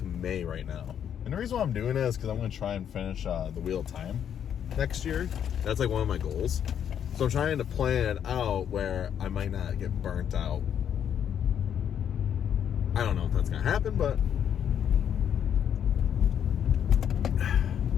May right now. And the reason why I'm doing it is because I'm going to try and finish The Wheel of Time next year. That's like one of my goals. So I'm trying to plan out where I might not get burnt out. I don't know if that's going to happen, but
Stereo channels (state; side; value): quieter; right; 9.0 dB